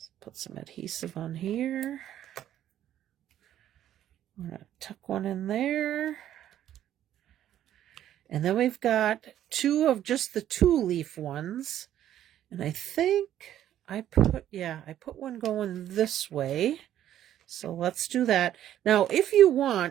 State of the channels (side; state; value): left; quieter; 11.5 dB